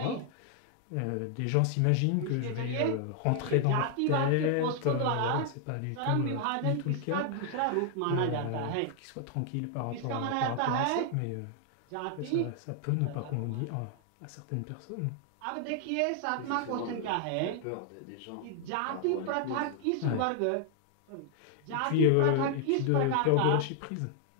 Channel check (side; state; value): both; different; correlation 0.00